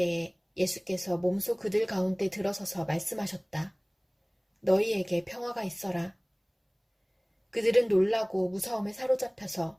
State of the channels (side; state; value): both; identical; correlation 1.00